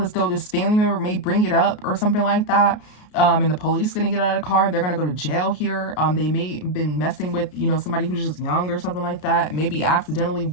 as though this family member may bring it up or something like that. And the police is going to get out of the car. They're going to go to jail here. They may have been messing with, somebody who's just young or something like that. Maybe accidentally,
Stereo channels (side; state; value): right; late; 33 ms